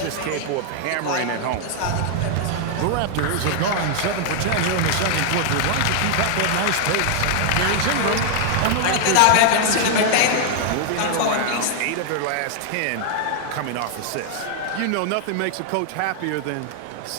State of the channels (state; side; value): different; both; correlation 0.00